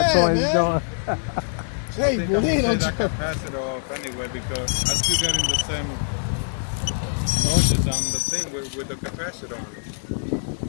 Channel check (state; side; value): silent; right; 63 dB below the other